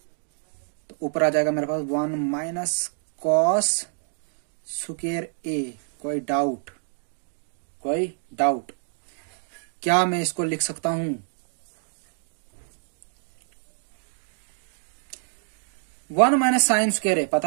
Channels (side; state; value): left; silent; digital silence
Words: तो ऊपर आ जाएगा मेरे पास 1 माइनस cos स्क्वायर ए। कोई डाउट? कोई डाउट? क्या मैं इसको लिख सकता हूं 1 माइनस साइन स्क्वायर ए,